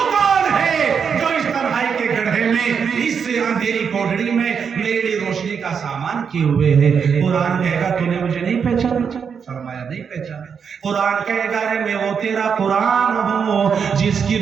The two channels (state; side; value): quieter; left; 6.6 dB